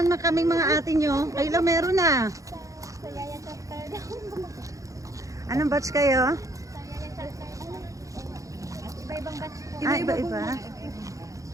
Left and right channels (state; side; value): late; left; 0.16 ms